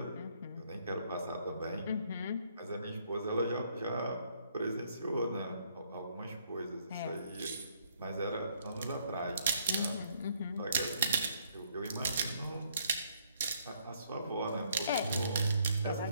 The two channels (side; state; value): both; inverted; correlation -0.68